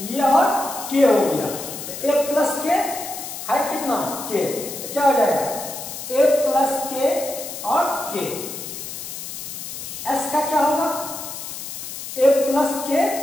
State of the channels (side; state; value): left; noise; hiss, 9 dB below the sound